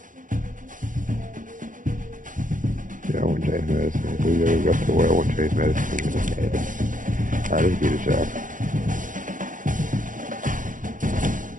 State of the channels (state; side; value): late; left; 0.38 ms